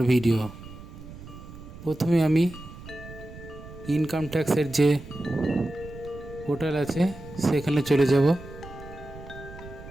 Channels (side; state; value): right; noise; rumble, 15 dB below the sound